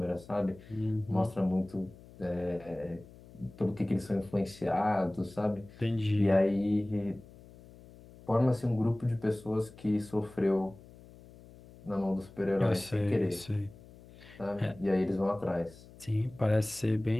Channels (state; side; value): noise; left; hum, 21 dB below the sound